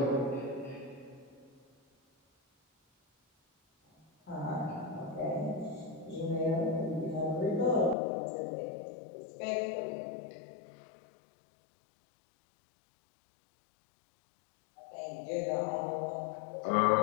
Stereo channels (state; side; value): drops out; right; at 8.0 s